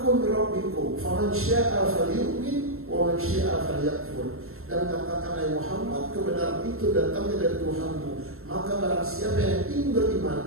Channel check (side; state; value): left; late; 0.62 ms